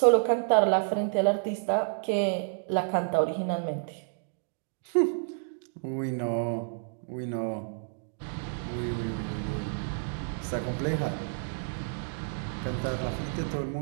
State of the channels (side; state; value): left; silent; digital silence